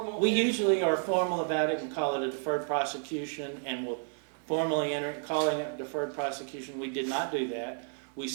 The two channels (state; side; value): silent; left; 57 dB below the other